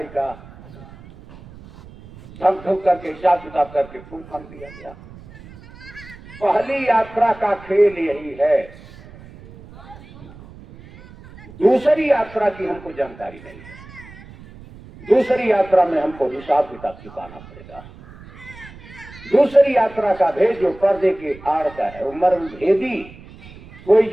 का, धक धुक करके हिसाब किताब करके फूल फन दिया गया। पहली यात्रा का खेल यही है, दूसरी यात्रा की हमको जानकारी नहीं है। दूसरी यात्रा में हमको हिसाब किताब चुकाना पड़ेगा। दूसरी यात्रा का भेद जो पर्दे के आड़ का है, वो मर्म भेदी। कोई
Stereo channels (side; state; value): right; noise; rumble, 19 dB below the sound